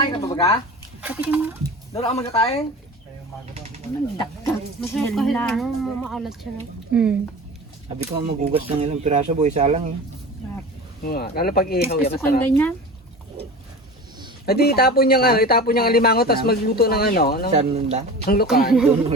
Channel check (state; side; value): normal; both; correlation 0.34